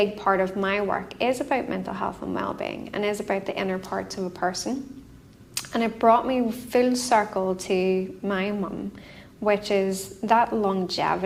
part of my work is about mental health and well-being, and is about the inner parts of a person. And it brought me full circle to my mum, which is that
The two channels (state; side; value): identical; both; correlation 1.00